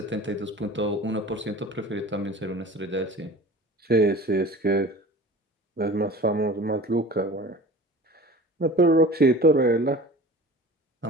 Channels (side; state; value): both; normal; correlation 0.39